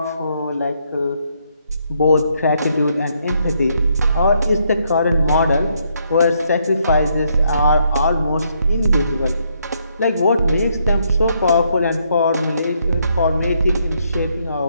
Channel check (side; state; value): both; inverted; correlation -0.74